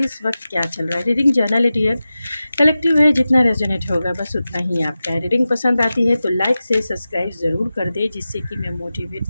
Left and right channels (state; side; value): inverted; both; correlation -0.94